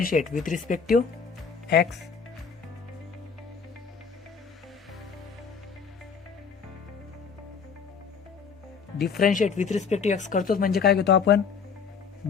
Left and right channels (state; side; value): quieter; right; 6.0 dB